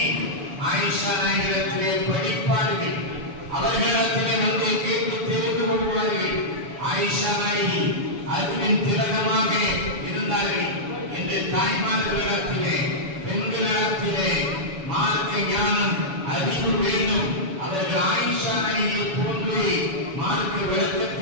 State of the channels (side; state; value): left; late; 7.0 ms